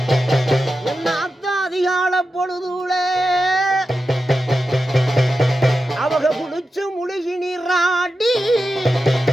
என்னாத்த அதிகால பொழுதுல அவங்க குளிச்சு முழுகி நீராடி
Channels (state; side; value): normal; both; correlation 0.91